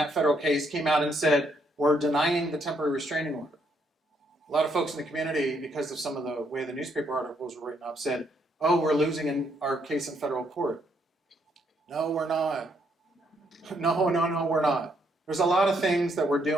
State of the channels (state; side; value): normal; both; correlation 0.73